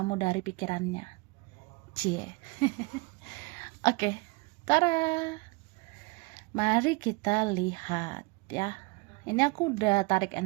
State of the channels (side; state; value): left; quieter; 27.6 dB